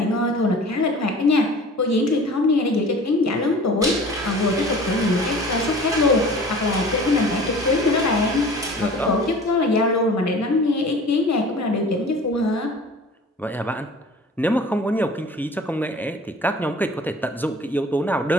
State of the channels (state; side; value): normal; both; correlation 0.43